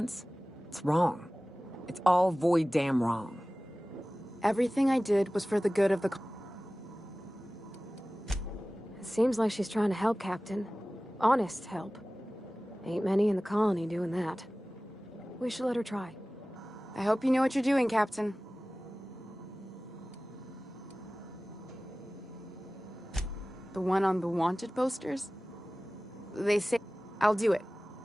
it's wrong. It's all void damn wrong. Everything I did was for the good of the... It seems like she's trying to help, Captain. Honest help. Ain't many in the colony doing that. We should let her try. I hope you know what you're doing, Captain. The one on the wanted posters? They say I'll do it.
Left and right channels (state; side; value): normal; both; correlation 0.97